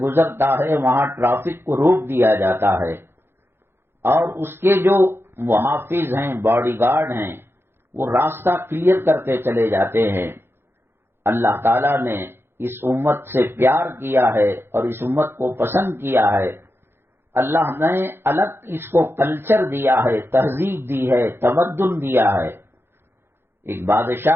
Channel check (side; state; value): left; late; 0.11 ms